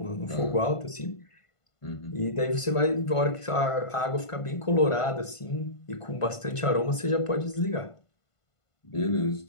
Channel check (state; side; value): late; right; 1.5 ms